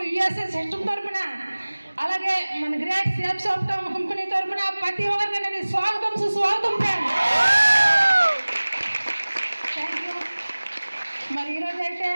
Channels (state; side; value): inverted; both; correlation -1.00